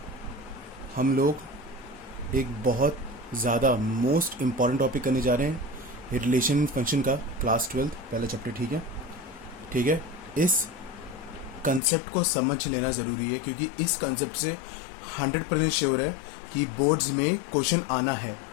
हम लोग एक बहुत ज़्यादा मोस्ट इम्पॉर्टेंट टॉपिक करने जा रहे हैं, रिलेशन फंक्शन का, क्लास 12 पहला चैप्टर। ठीक है? ठीक है। इस कंसेप्ट को समझ लेना ज़रूरी है क्योंकि इस कंसेप्ट से 100% श्योर है कि बोर्ड्स में क्वेश्चन आना है,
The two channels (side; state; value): right; drops out; at 11.8 s